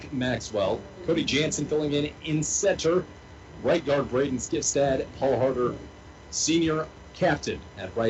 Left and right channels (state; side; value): identical; both; correlation 1.00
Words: Maxwell. Cody Jansen filling in center. Right guard, Braden Skifstad. Paul Harder, senior captain at